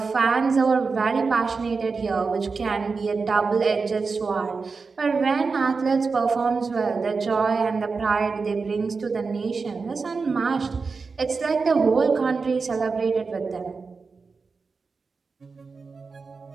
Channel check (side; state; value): left; quieter; 4.6 dB